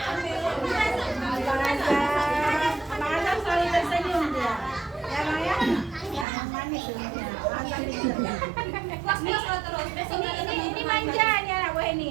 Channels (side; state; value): left; drops out; at 6.2 s